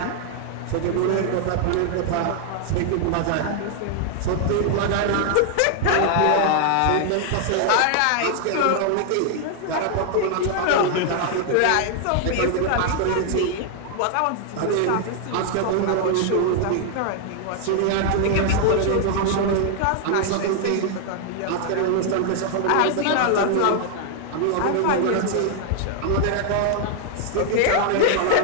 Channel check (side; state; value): both; different; correlation 0.00